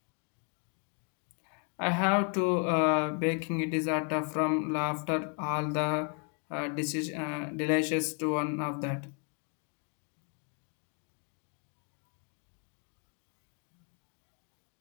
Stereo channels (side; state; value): right; quieter; 37.6 dB